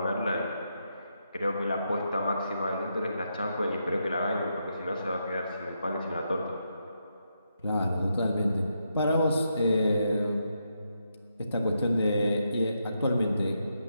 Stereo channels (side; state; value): both; inverted; correlation -0.82